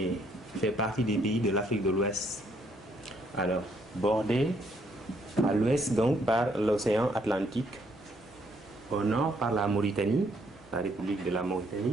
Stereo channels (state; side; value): normal; both; correlation 0.70